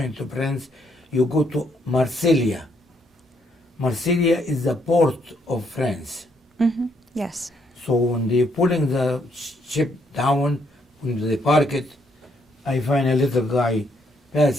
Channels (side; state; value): both; normal; correlation 0.72